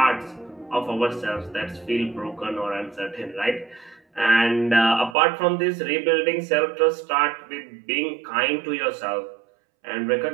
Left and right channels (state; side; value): drops out; left; at 5.2 s